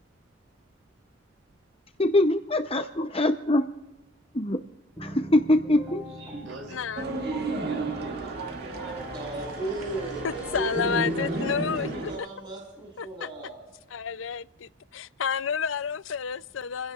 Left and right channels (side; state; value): both; normal; correlation 0.45